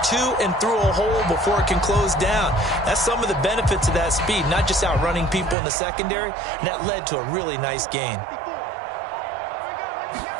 to and through a hole before it can close down. That's some of the benefits of that speed, not just outrunning people in the secondary, and that led to a really nice gain.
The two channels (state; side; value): drops out; left; at 5.6 s